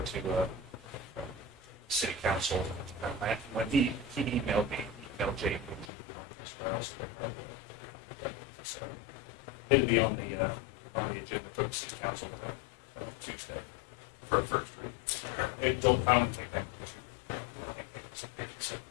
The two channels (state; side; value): drops out; right; at 5.9 s